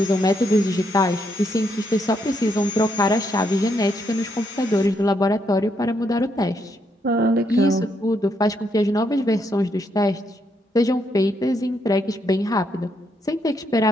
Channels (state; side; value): normal; both; correlation 0.77